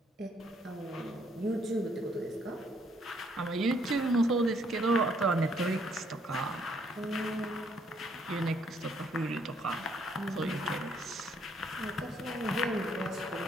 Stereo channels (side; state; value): both; normal; correlation 0.68